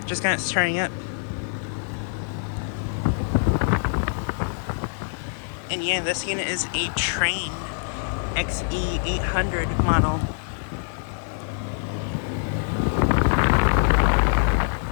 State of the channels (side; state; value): right; silent; 62 dB below the other